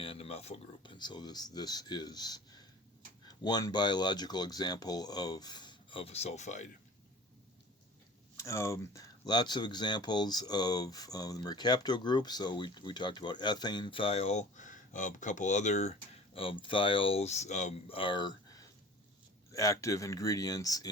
a methyl group, and so this is one biological example of a sulfide. Lots of examples of the mercapto group. So we talked about ethane thiol. A couple other thiols are active ingredients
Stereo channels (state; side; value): normal; both; correlation 0.43